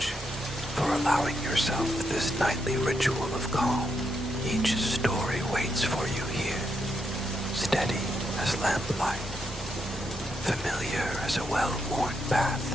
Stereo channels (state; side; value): normal; both; correlation 0.81